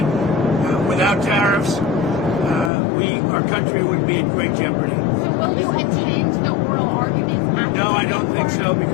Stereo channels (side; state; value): right; drops out; at 2.7 s